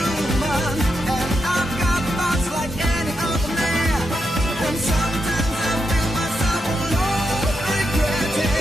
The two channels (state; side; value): normal; both; correlation 0.84